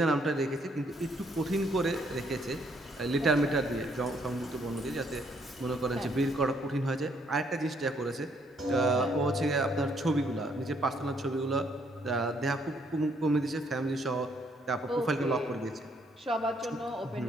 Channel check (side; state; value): both; normal; correlation 0.69